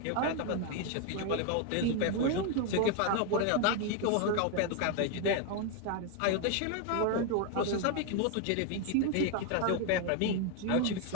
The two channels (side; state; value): both; different; correlation 0.01